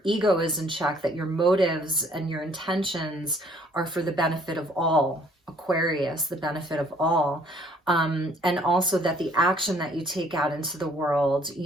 ego is in check, that your motives and your intentions are for the benefit of all, Aquarius, the benefit of all. And also that the action that you take out into the world,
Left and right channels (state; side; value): normal; both; correlation 0.60